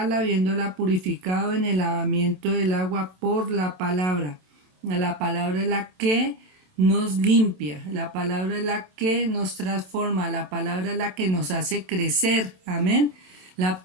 habiéndola purificado en el lavamiento del agua por la palabra. La palabra es la que nos limpia, la palabra es la que nos transforma, la palabra es la que nos hace crecer. Amén.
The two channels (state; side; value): late; left; 27 ms